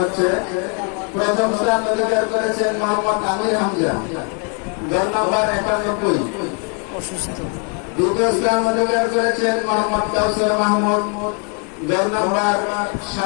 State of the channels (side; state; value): right; quieter; 38.1 dB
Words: প্রথম স্থান অধিকার করেছেন মোহাম্মদ আমির হামজা, দল নম্বর 91। দ্বিতীয় স্থান অধিকার করেছেন মোহাম্মদ কাউসার মাহমুদ, দল নম্বর